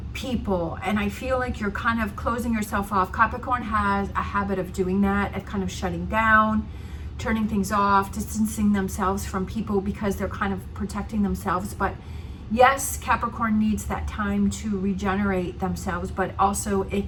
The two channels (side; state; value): both; identical; correlation 1.00